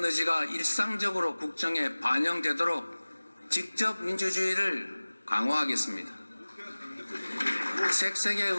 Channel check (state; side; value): inverted; both; correlation -1.00